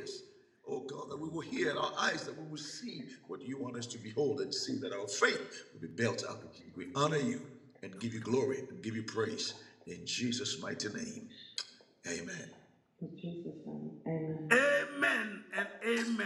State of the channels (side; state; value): both; identical; correlation 1.00